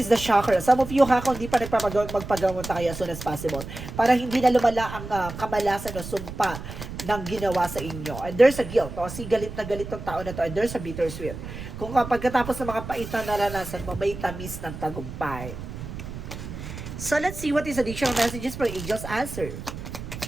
the chakra. Some of you, ha, kung hindi pa magpagamot na kayo as soon as possible. Para hindi na lumala ang kamalasan o sumpa ng ginawa sa inyo. And there's a guilt. O, si galit na galit ng tao na to. And there's a bittersweet. Kung pagkatapos ng mga pait na naranasan mo, may tamis ng tagumpay. So, let's see what is additional messages for Angel's Answer.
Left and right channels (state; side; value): noise; right; rumble, 10 dB below the sound